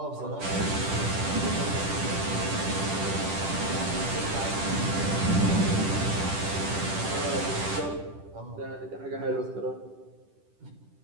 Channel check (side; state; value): left; late; 10 ms